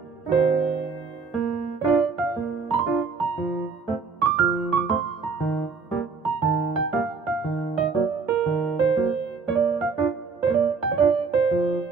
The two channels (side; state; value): left; quieter; 4.9 dB